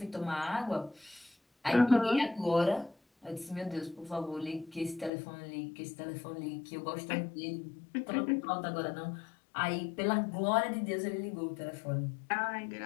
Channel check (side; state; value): right; drops out; at 5.1 s